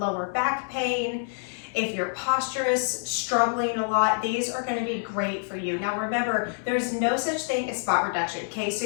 back pain, if your posture is struggling a lot, these are going to be great for you. Now remember, there's no such thing as spot reduction. Okay,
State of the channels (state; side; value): silent; right; digital silence